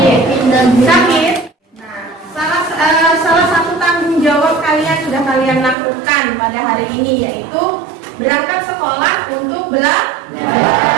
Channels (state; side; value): drops out; left; at 5.8 s